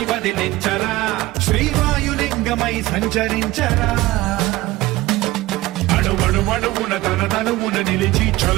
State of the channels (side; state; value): left; quieter; 18.2 dB